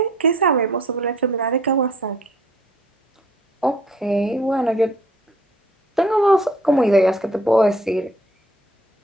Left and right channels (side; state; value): both; normal; correlation 0.57